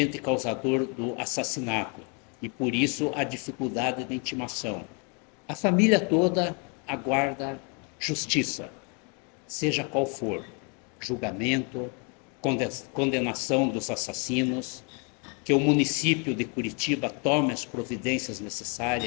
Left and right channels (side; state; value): right; quieter; 35.9 dB